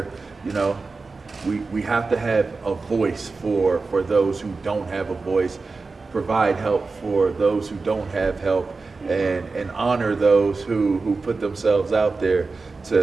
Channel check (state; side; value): quieter; left; 4.1 dB